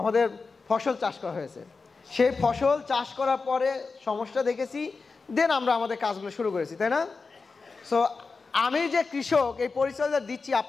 ফসল চাষ করা হয়েছে। সেই ফসল চাষ করার পরে সমস্যা দেখেছি, দেন আমরা আমাদের কাজগুলো শুরু করেছি, তাই না? সো আমি যে কৃষক, এই পরিচয়টা দিচ্ছি,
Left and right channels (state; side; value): quieter; right; 4.4 dB